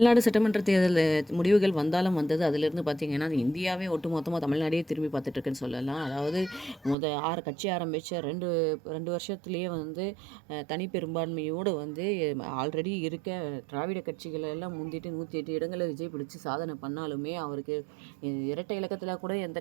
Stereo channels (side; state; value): left; drops out; at 7.0 s